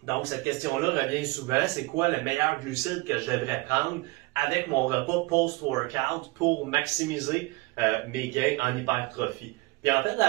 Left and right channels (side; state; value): left; quieter; 23.1 dB